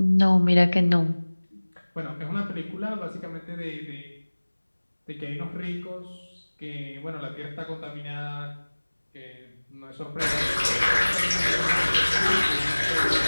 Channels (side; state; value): both; inverted; correlation -1.00